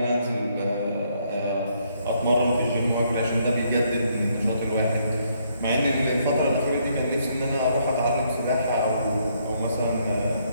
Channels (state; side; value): inverted; both; correlation -0.71